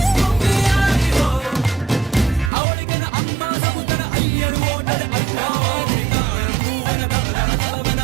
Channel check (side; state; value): left; drops out; at 2.5 s